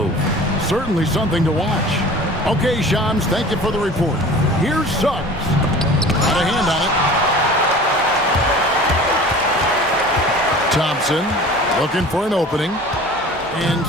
Certainly something to watch. Okay, Shams, thank you for the report. Here's Suggs. Got a hand on it. Thompson looking for an opening. And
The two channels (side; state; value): both; normal; correlation 0.42